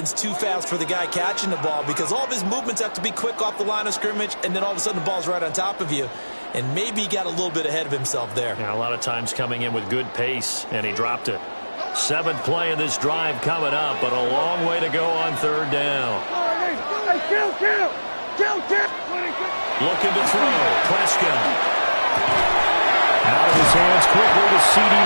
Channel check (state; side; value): inverted; both; correlation -1.00